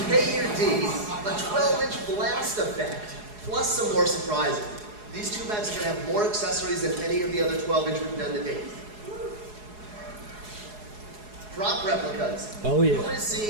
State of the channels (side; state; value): left; late; 4.8 ms